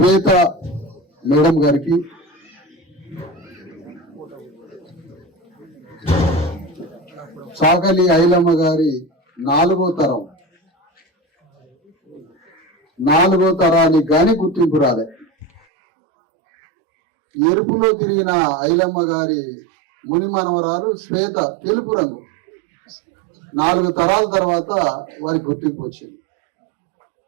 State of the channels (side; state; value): left; drops out; at 15.6 s